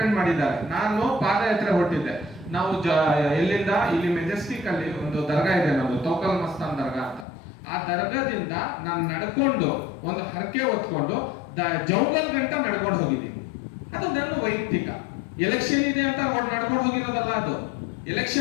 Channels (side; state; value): right; drops out; at 7.2 s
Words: ಮಾಡಿದ್ದಾರೆ. ನಾನು ಪಾದಯಾತ್ರೆ ಹೊರಟಿದ್ದೆ. ನಾವು ಎಲ್ಲಿಂದ ಇಲ್ಲಿ ಮೆಜೆಸ್ಟಿಕ್ ಅಲ್ಲಿ ಒಂದು ದರ್ಗಾ ಇದೆ, ನಮ್ದು ತೌಕಲ್ ಮಸ್ತಾನ್ ದರ್ಗಾ ಅಂತ. ಆ ದರ್ಗಾದಿಂದ ನಾನು ನಡ್ಕೊಂಡು ಒಂದು ಹರಕೆ ಹೊತ್ಕೊಂಡು ಜಂಗಲ್ ಗಂಟ ನಡ್ಕೊಂಡು ಹೋಗಿದ್ದೀನಿ. ಅದು ನನ್ನ ವೈಯಕ್ತಿಕ. ಎಲೆಕ್ಷನ್ ಇದೆ ಅಂತ ನಡ್ಕೊಂಡು ಹೋಗಿರೋದಲ್ಲ, ಅದು